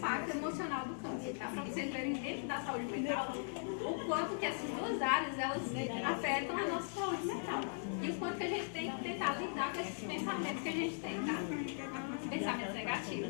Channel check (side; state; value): right; silent; digital silence